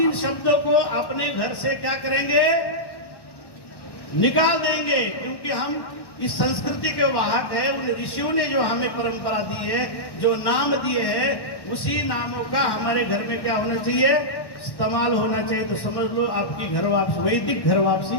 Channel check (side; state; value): right; late; 1.1 ms